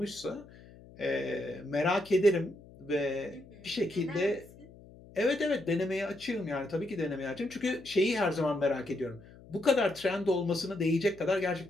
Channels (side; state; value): left; noise; hum, 21 dB below the sound